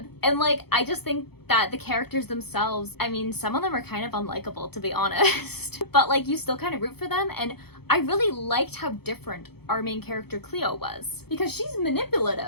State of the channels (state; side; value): late; right; 0.96 ms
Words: And like, I just think that the characters themselves, I mean, some of them are kind of unlikable, to be honest. But like, you still kind of root for them. And I really liked how different our main character Clio was, because she's